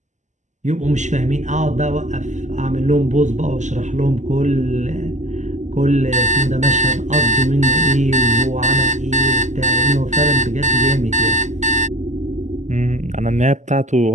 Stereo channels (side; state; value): left; late; 0.34 ms